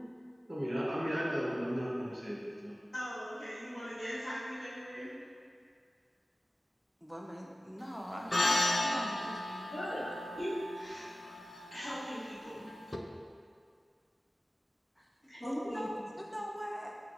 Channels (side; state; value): both; normal; correlation 0.96